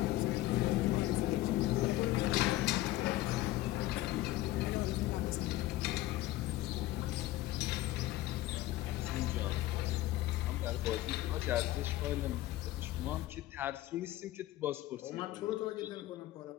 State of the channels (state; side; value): quieter; right; 16.2 dB